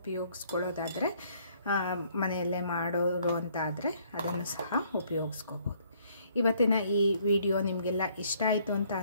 ಮನೆಯಲ್ಲೇ ಮಾಡೋರು ಅಂತ ಆದರೆ ಅದನ್ನು ಸಹ ಉಪಯೋಗಿಸ್ಕೋಬೋದು. ಇವತ್ತಿನ ಈ ವಿಡಿಯೋ ನಿಮಗೆಲ್ಲ ಇಷ್ಟ ಆಯಿತು ಅಂತ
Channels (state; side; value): inverted; both; correlation -0.64